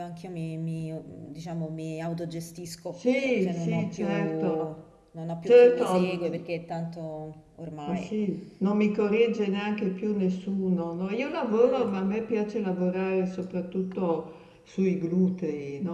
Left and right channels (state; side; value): identical; both; correlation 1.00